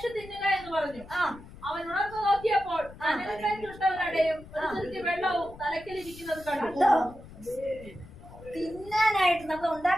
തിന്നുക എന്ന് പറഞ്ഞു. അവൻ ഉണർന്നു നോക്കിയപ്പോൾ അനൽമേറ്റുള്ളവരുടെയും വെള്ളവും തലക്കിലിരിക്കുന്നത് കണ്ടു. തിന്നാനായിട്ട് നമ്മൾ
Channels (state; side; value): noise; left; rumble, 18 dB below the sound